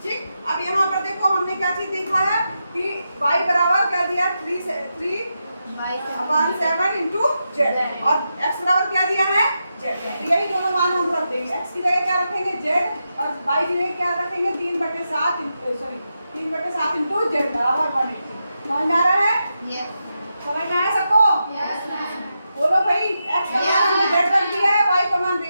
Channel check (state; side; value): inverted; both; correlation -0.87